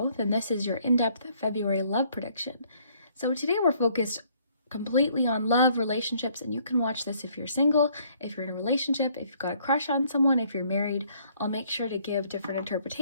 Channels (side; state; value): both; inverted; correlation -0.64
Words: then this is your in-depth February love prediction. So today we're focused completely on love, relationships, and you can watch this if you're single, if you're in a relationship, if you've got a crush on someone, if you're married. I'll make sure to give different